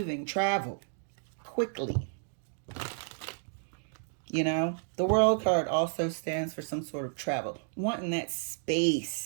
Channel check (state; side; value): silent; left; digital silence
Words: travel, quickly. You know, the World card also stands for some sort of travel, wanting that